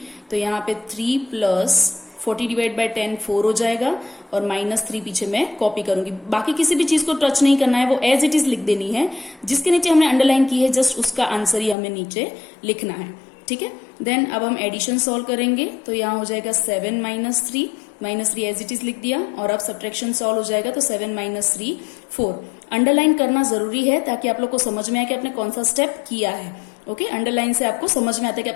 तो यहाँ पे 3 + 40 / 10 4 हो जाएगा, और -3 पीछे मैं कॉपी करूंगी। बाकी किसी भी चीज को टच नहीं करना है, वो एज इट इज लिख देनी है। जिसके नीचे हमने अंडरलाइन की है, जस्ट उसका आंसर ही हमें नीचे लिखना है। ठीक है, देन अब हम एडिशन सॉल्व करेंगे। तो यहाँ हो जाएगा 7 - 3 एज इट इज लिख दिया, और अब सब्ट्रैक्शन सॉल्व हो जाएगा, तो 7 - 3 4। अंडरलाइन करना जरूरी है ताकि आप लोग को समझ में आए कि आपने कौन सा स्टेप किया है। ओके, अंडरलाइन से आपको समझ में आता है कि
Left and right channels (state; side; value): drops out; right; at 11.8 s